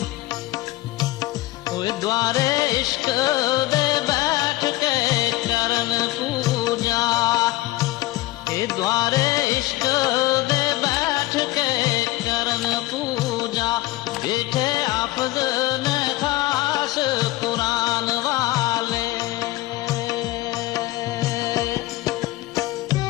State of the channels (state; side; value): quieter; right; 17.8 dB